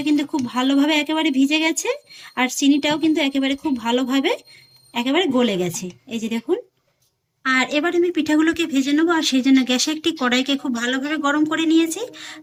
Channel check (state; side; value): identical; both; correlation 1.00